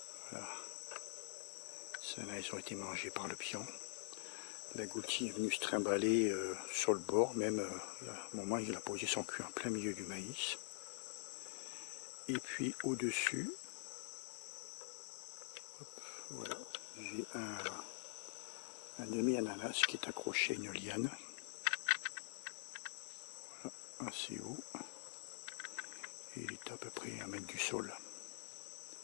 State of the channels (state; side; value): silent; right; digital silence